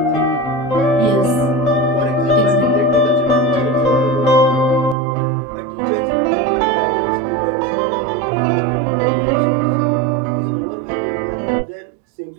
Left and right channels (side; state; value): left; drops out; at 5.0 s